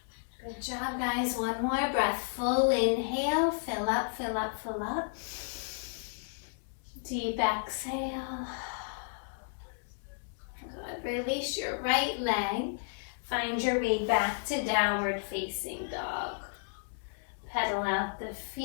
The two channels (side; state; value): right; silent; digital silence